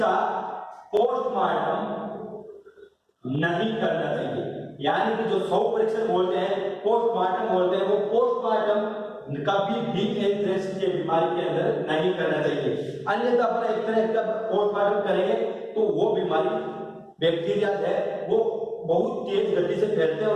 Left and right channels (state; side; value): identical; both; correlation 1.00